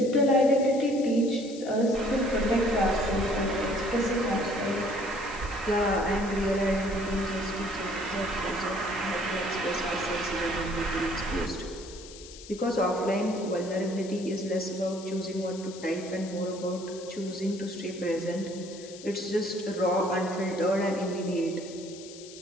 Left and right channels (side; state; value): left; noise; hiss, 16 dB below the sound